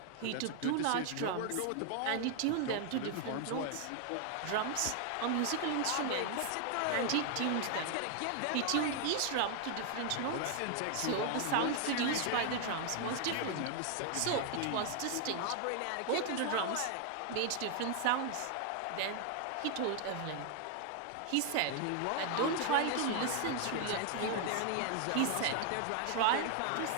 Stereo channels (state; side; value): different; both; correlation 0.00